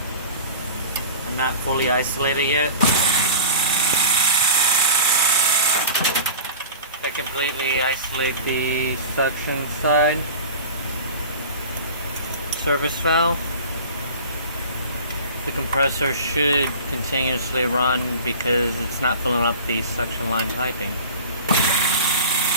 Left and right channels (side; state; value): both; inverted; correlation -0.38